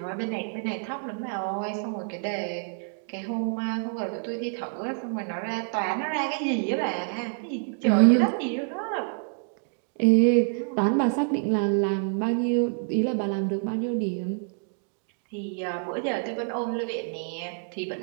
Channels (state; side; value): silent; left; 60 dB below the other